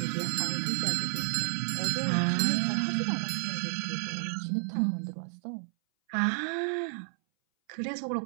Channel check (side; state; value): left; silent; 57 dB below the other